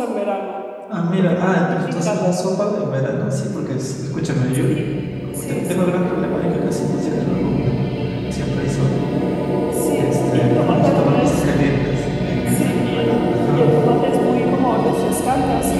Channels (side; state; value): both; identical; correlation 1.00